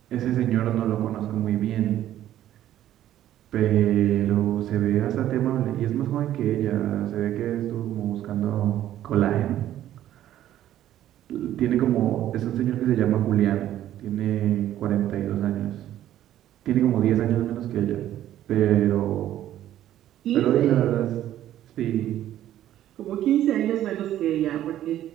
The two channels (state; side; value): quieter; left; 12.3 dB